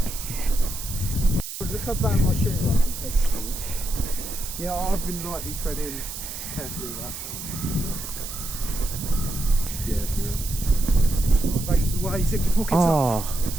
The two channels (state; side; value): noise; right; hiss, 8 dB below the sound